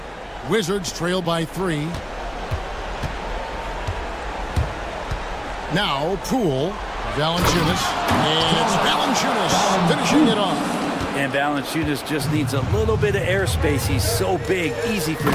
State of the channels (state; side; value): identical; both; correlation 1.00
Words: Wizards trail by 3. Now Poole. Valanciunas. And it's Valanciunas finishing it off. And Valanciunas just needs a little bit of airspace. He's so big, easy for